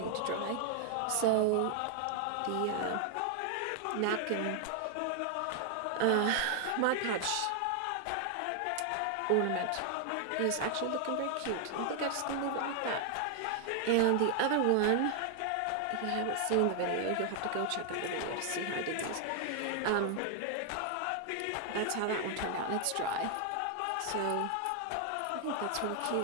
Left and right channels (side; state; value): both; different; correlation 0.00